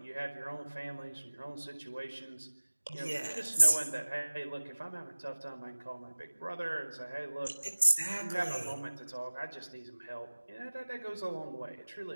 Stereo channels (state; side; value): inverted; both; correlation -1.00